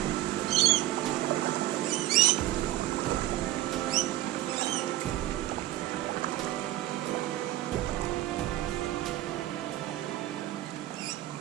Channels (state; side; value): quieter; left; 14.6 dB